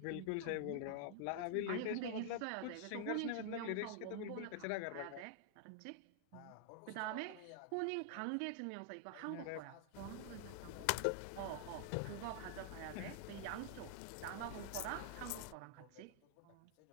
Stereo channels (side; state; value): both; different; correlation -0.01